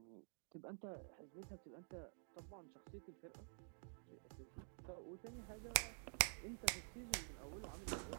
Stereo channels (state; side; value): silent; left; digital silence